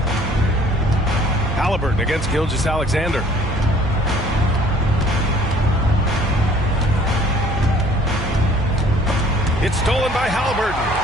Halliburton against Gilgeous-Alexander. It's stolen by Halliburton.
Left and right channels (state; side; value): normal; both; correlation 0.55